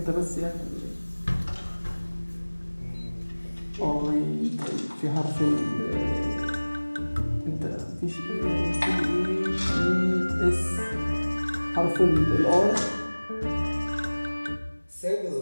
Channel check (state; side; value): inverted; both; correlation -1.00